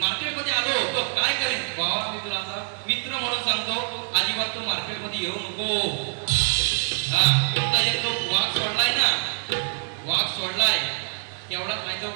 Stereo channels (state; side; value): silent; left; 62 dB below the other